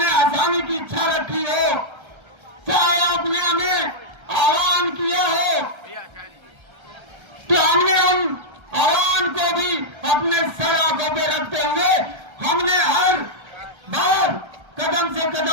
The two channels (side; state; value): left; late; 1.3 ms